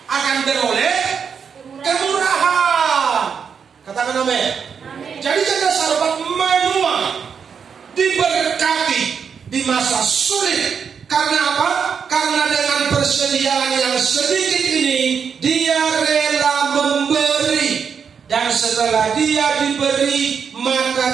Akan beroleh kemurahan. Katakan amin. Jadi janda Sarfat menua, diberkati di masa sulit. Karena apa? Karena dengan persediaan yang sedikit ini, dia rela memberi. Dan setelah dia diberi,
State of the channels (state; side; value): quieter; left; 6.7 dB